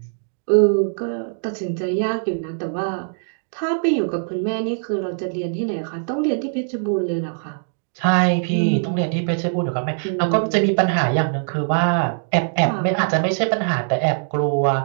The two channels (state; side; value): silent; left; digital silence